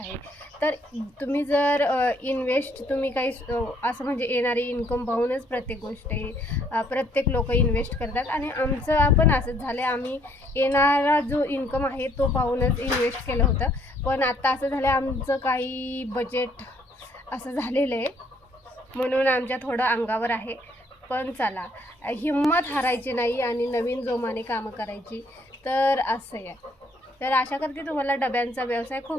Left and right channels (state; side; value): normal; both; correlation 0.66